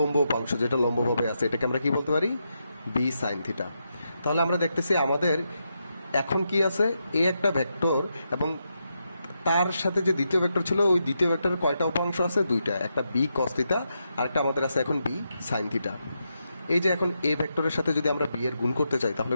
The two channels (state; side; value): inverted; both; correlation -0.84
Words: উপাংশ যেটা লম্বভাবে আছে এটাকে আমরা কি বলতে পারি, বি সাইন থিটা। তাহলে আমরা দেখতেছি আমাদের এখন কি আছে, এ একটা ভেক্টর এবং তার সাথে যে দ্বিতীয় ভেক্টর ছিল ওই দ্বিতীয় ভেক্টরের কয়টা উপাংশ আছে, দুইটা, একটা বি কস থিটা আর একটা আমাদের আছে এখন বি সাইন থিটা। এই যে এখন এ ভেক্টরের সাথে যদি আমরা বি এর গুণ করতে চাই তাহলে